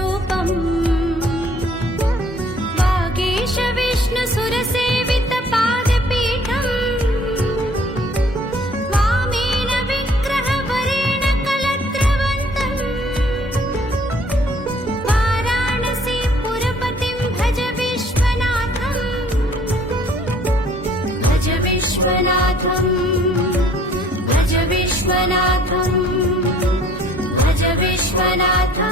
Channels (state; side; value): normal; both; correlation 0.57